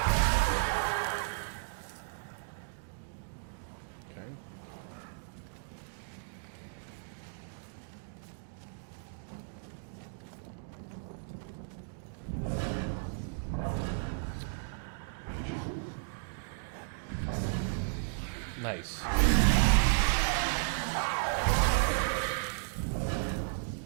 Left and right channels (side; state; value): left; silent; digital silence